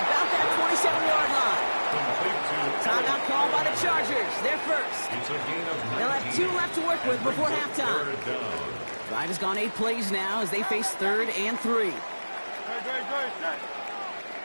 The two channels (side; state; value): both; inverted; correlation -1.00